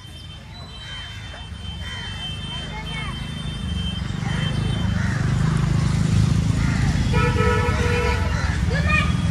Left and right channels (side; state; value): both; identical; correlation 1.00